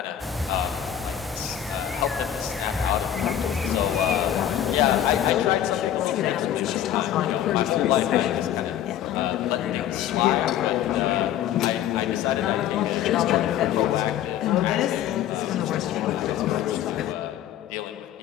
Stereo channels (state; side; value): quieter; right; 10.7 dB